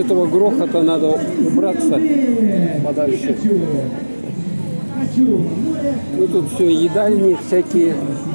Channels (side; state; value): both; inverted; correlation -1.00